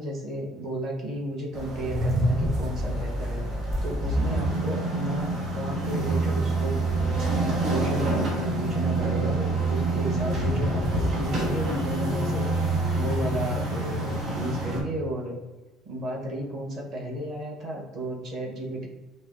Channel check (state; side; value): normal; both; correlation 0.59